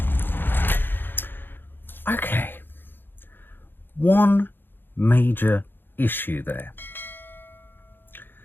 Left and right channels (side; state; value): right; late; 0.098 ms